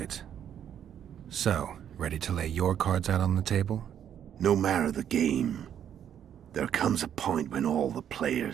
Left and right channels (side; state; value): left; quieter; 9.5 dB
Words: So, ready to lay your cards out on the table? No matter the game, there comes a point when all the